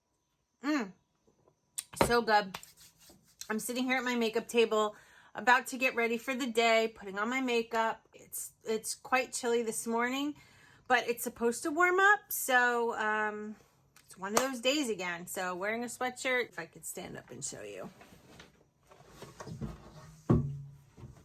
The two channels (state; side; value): identical; both; correlation 1.00